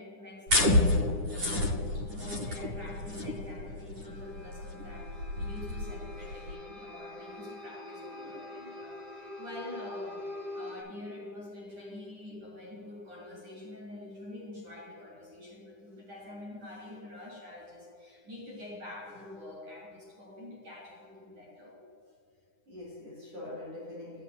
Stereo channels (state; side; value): late; left; 10 ms